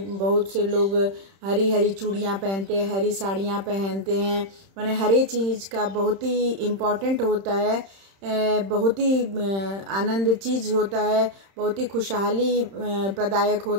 से लोग हरी हरी चूड़ियाँ पहनते हैं, हरी साड़ियाँ पहनते हैं। माने हर एक चीज़ का बहुत ही इम्पोर्टेंट होता है, बहुत ही आनंद चीज होता है, बहुत ही खुशहाली प्रदायक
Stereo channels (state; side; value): late; left; 31 ms